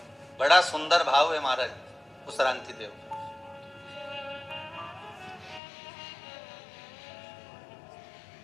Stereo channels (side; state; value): right; drops out; at 5.6 s